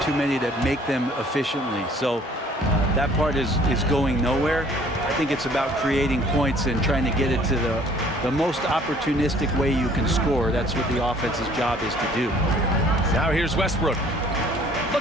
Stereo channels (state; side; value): normal; both; correlation 0.56